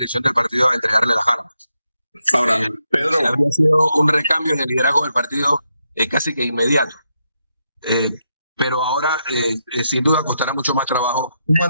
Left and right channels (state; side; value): inverted; both; correlation -0.82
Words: del partido a entregarle las armas. Ahora, Pedro, habría sido un recambio en el liderazgo del partido casi que inmediato. Pero ahora, sin duda, costará mucho más trabajo